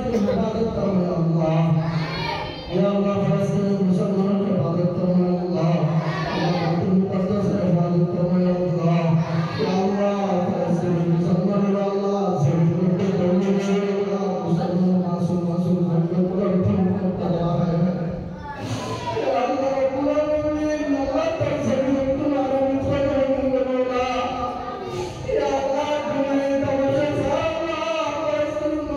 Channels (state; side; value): identical; both; correlation 1.00